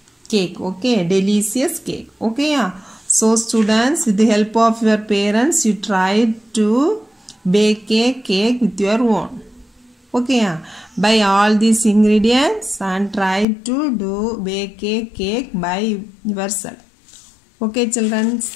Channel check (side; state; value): right; drops out; at 13.5 s